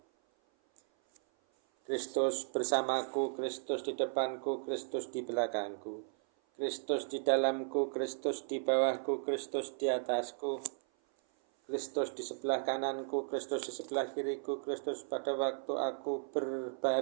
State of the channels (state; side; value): silent; left; 54 dB below the other